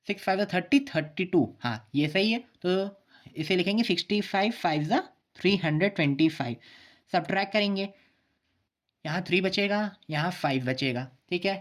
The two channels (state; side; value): identical; both; correlation 1.00